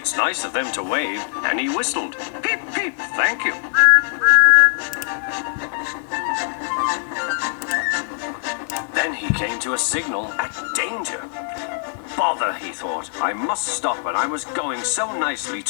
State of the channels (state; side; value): silent; right; digital silence